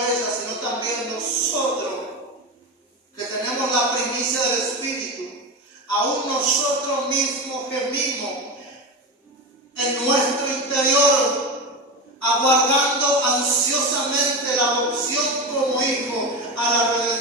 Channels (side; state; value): both; normal; correlation 0.20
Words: sino también nosotros, que tenemos la primicia del Espíritu, aún nosotros mismos gemimos en nuestro interior, aguardando ansiosamente la adopción como hijo a la